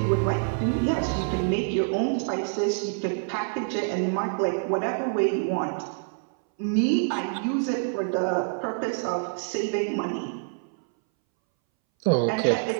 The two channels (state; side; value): silent; left; 61 dB below the other